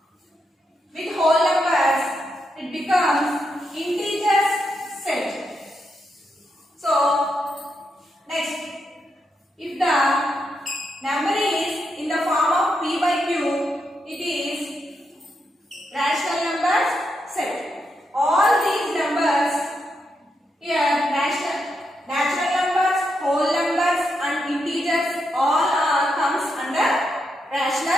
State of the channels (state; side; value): normal; both; correlation 0.83